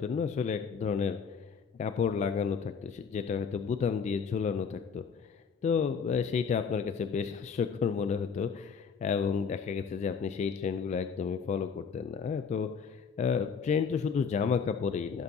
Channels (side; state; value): right; quieter; 6.0 dB